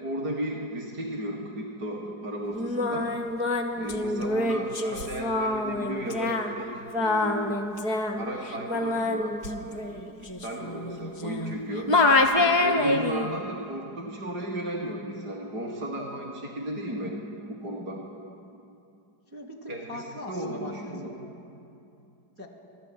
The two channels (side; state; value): left; late; 4.8 ms